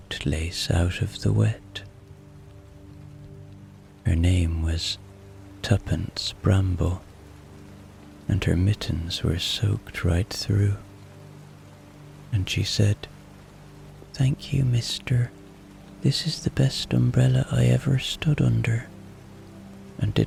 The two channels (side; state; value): both; identical; correlation 1.00